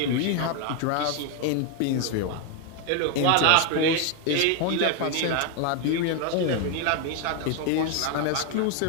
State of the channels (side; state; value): both; different; correlation 0.01